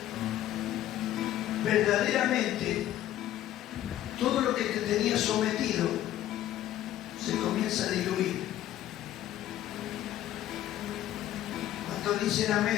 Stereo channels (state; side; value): quieter; right; 12.9 dB